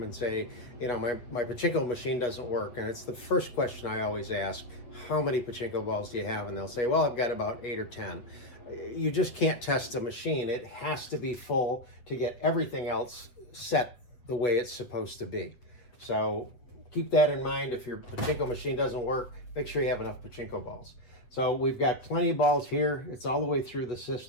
and say, you know, my pachinko machine doesn't work. And it's the first question I always ask, how many pachinko balls do you have? And they'll say, well, I've got about 8 or 10. You just can't test a machine. It has to be full to get everything else set the way it's supposed to be. So keep that in mind. If your pachinko machine doesn't work, make sure you have enough pachinko balls. So we've got plenty of balls here. It's all the way through the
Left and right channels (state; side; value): late; right; 8.3 ms